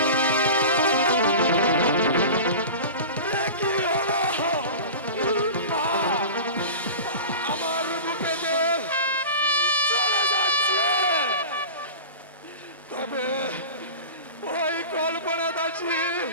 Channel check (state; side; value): inverted; both; correlation -0.32